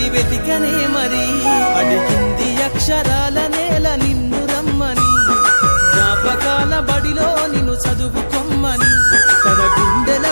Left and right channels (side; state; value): both; inverted; correlation -1.00